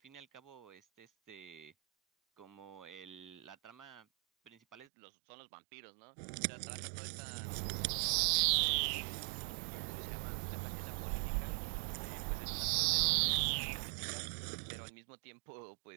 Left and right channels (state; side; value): drops out; left; at 4.9 s